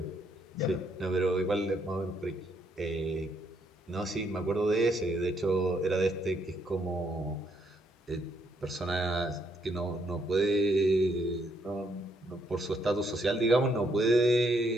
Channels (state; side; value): normal; both; correlation 0.72